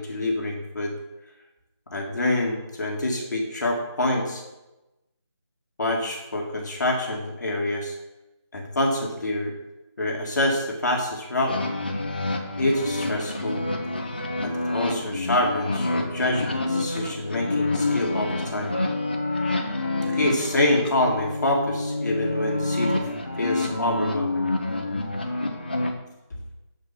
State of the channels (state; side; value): inverted; both; correlation -0.66